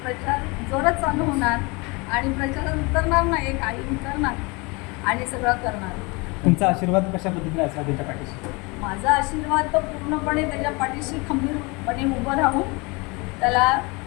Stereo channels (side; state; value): right; quieter; 27.4 dB